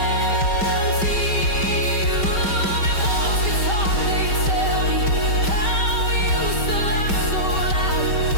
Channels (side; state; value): right; late; 5.2 ms